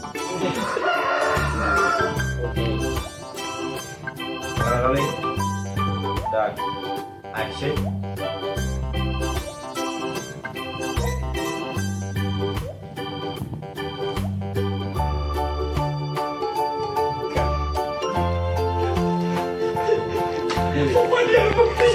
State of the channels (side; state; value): both; identical; correlation 1.00